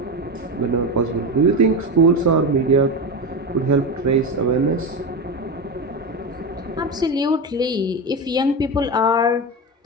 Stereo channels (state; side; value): normal; both; correlation 0.18